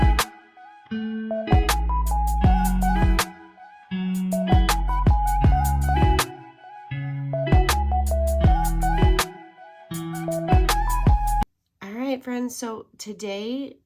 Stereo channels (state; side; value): identical; both; correlation 1.00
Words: Friends, so today